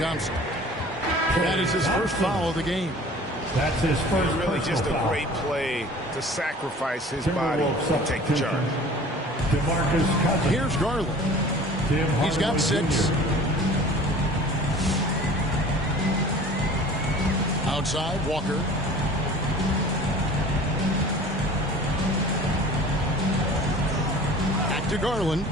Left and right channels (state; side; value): normal; both; correlation 0.44